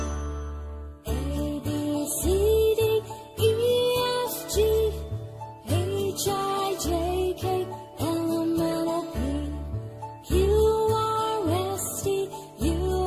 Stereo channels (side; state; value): both; identical; correlation 1.00